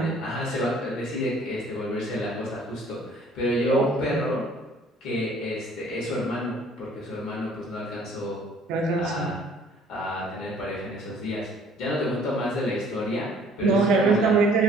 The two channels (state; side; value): normal; both; correlation 0.56